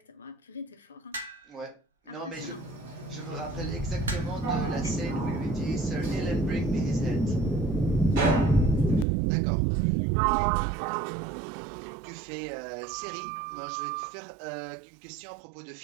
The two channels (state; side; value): drops out; left; at 9.1 s